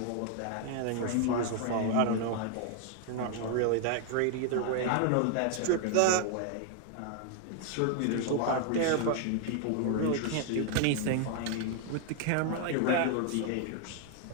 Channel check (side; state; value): both; different; correlation 0.00